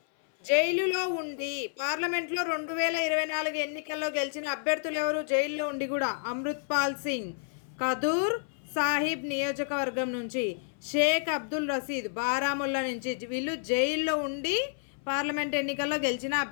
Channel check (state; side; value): silent; right; 56 dB below the other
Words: జైలులో ఉండి పార్లమెంట్లో 2024 ఎన్నికల్లో గెలిచిన అభ్యర్థులు ఎవరు? జైల్లో ఉండి కూడా అమృత్పాల్ సింగ్ ఖదూర్ సాహిబ్ నియోజకవర్గం నుంచి, షేక్ అబ్దుల్ రషీద్ బారాముల్లా నుంచి. వీళ్ళు జైల్లో ఉండి పార్లమెంట్ ఎన్నికల్లో గెలిచిన